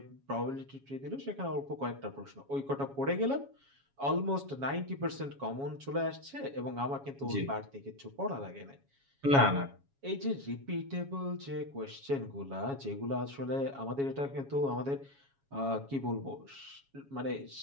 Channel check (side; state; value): left; late; 7.2 ms